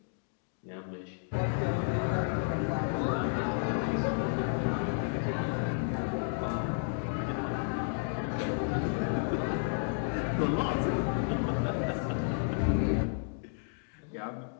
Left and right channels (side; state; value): right; silent; digital silence